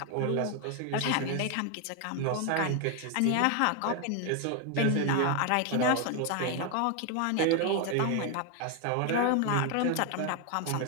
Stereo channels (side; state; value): both; different; correlation 0.01